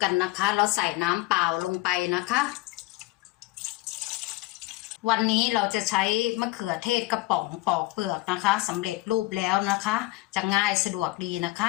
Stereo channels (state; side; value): quieter; right; 19.7 dB